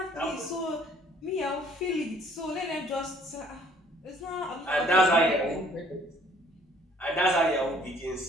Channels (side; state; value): both; normal; correlation 0.59